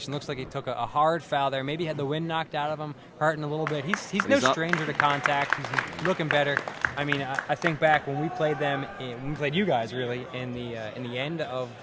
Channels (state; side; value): identical; both; correlation 1.00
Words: Looks like he took a hard foul there. Maybe had the wind knocked out of him, hurting a little bit. He's no stranger to contact. He's looking better. I mean, I think back when we played them, when we played you guys really in the end of